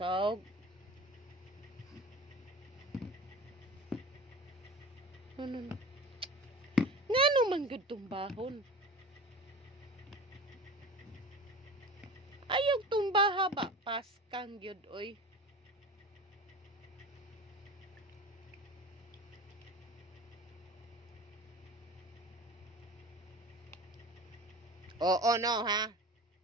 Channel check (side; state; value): both; normal; correlation 0.36